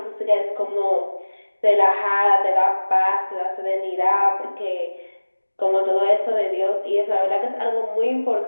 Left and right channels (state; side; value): inverted; both; correlation -1.00